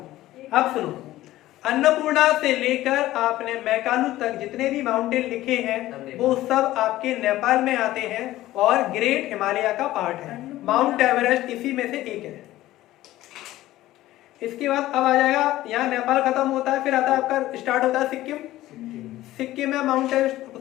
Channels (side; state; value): right; quieter; 15.6 dB